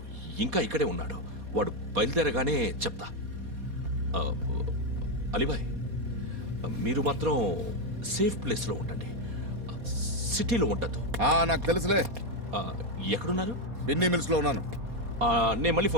ఇంకా ఇక్కడే ఉన్నాడు. వాడు బయలుదేరగానే చెప్తా. ఆ, అలీబాయ్, మీరు మాత్రం సేఫ్ ప్లేస్లో ఉండండి, సిటీలో ఉండద్దు. నాకు తెలుసులే. ఎక్కడున్నారు? బిన్నీ మిల్స్ లో ఉన్నాను. నేను మళ్ళీ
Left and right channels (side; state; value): left; late; 4.2 ms